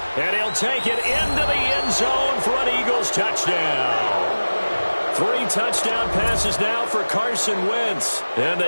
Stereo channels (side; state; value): both; inverted; correlation -1.00